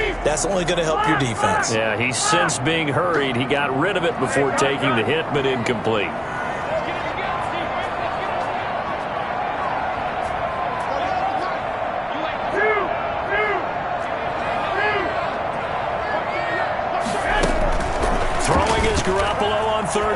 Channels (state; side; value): identical; both; correlation 1.00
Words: that's only going to help your defense. Yeah, he's since being hurried. He got rid of it before taking the hit, but incomplete. Throwing is Garoppolo on